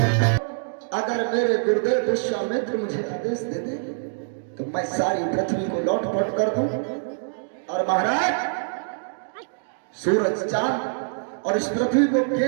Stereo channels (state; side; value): silent; left; digital silence